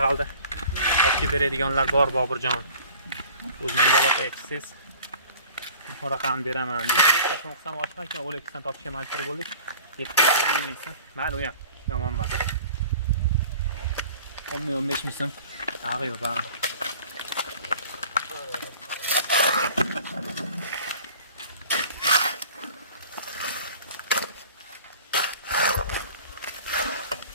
olib beradiganlar bor Boburjon. O'z menga aloqa etsangiz, bu raqamni beraman deb. To'qson boshqa ekan Olexdan topishga majbur bo'ldik. 7 ming so'm. Mayli, u ham yomon emas. 10-15 ming so'm. Ag'i yo'q, ag'i.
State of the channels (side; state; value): both; inverted; correlation -0.45